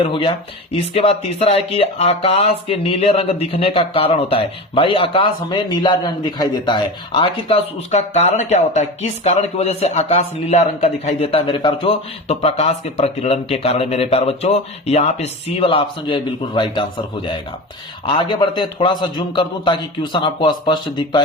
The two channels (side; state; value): both; normal; correlation 0.28